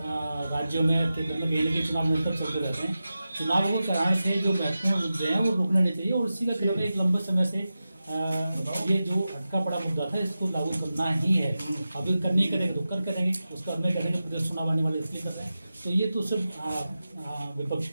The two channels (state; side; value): inverted; both; correlation -0.93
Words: में केंद्र में कहीं ना कहीं चुनाव निरंतर चलते रहते हैं। चुनावों को कराने से जो महत्वपूर्ण मुद्दे हैं वो रुकने नहीं चाहिए और इसी का कारण एक लंबे समय से ये जो अटका पड़ा मुद्दा था इसको लागू करना ही है। अभी करनी करेंगे तो कर करेंगे, उसका हमें करेंगे प्रदेश चुनाव आने वाले इसलिए कर रहे हैं। तो ये तो सिर्फ विपक्ष